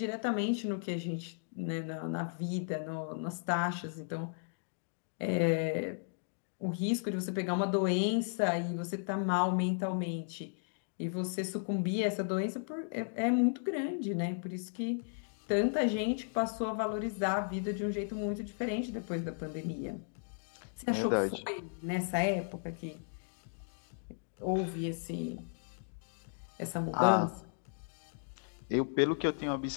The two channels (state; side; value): silent; right; digital silence